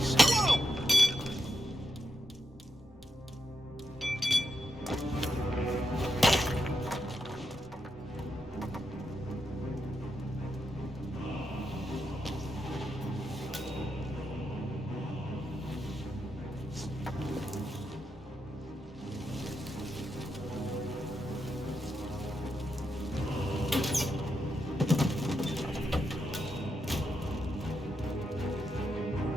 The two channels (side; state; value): both; normal; correlation 0.84